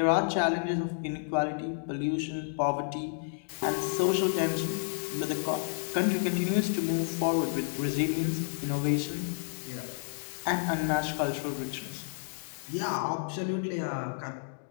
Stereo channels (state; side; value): silent; right; digital silence